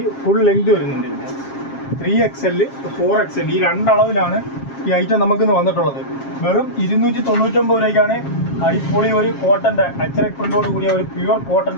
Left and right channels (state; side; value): late; right; 7.4 ms